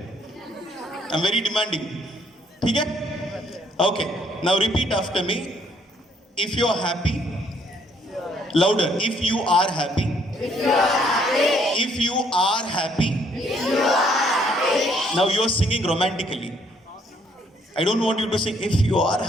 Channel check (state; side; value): normal; both; correlation 0.67